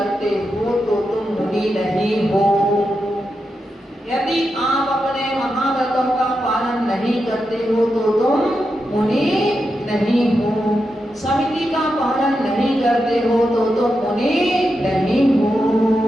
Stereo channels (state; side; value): normal; both; correlation 0.87